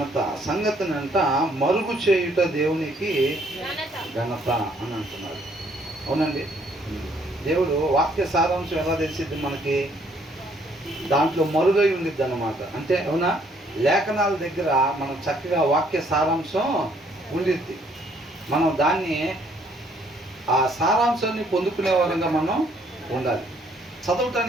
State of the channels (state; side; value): normal; both; correlation 0.65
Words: సంగతినంట మరుగు చేయుట దేవునికి ఘనత అని అంటున్నారు. అవునండి, దేవుడు వాక్య సారాంశం ఎలా తెలిసిద్ది మనకి? దాంట్లో మరుగై ఉండిద్ది అన్నమాట. అంటే అవునా, లేఖనాల దగ్గర మనం చక్కగా వాక్య సారాంశం ఉండిద్ది. మనం దాన్ని ఆ సారాంశాన్ని పొందుకునే వారంగా మనం ఉండాలి.